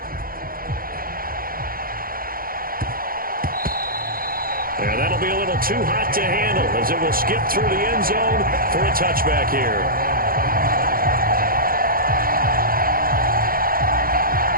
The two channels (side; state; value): left; late; 0.42 ms